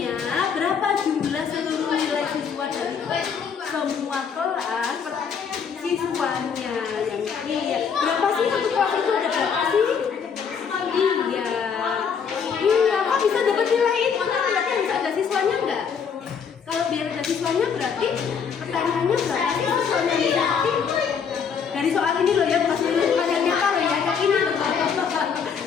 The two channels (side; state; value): right; quieter; 6.6 dB